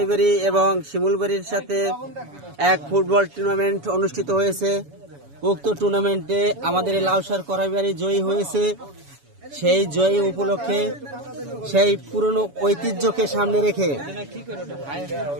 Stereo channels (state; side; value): late; left; 7.1 ms